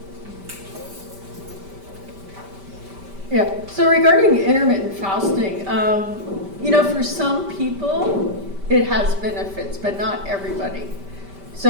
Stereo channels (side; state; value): left; late; 5.1 ms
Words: Yeah, so regarding intermittent fasting, you know, for some people, it has benefits, but not everybody.